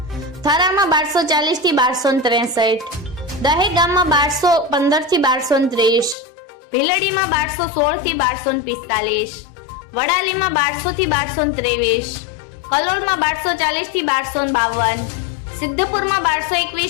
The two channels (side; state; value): right; drops out; at 6.2 s